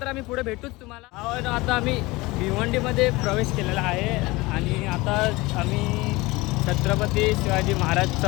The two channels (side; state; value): right; quieter; 21.8 dB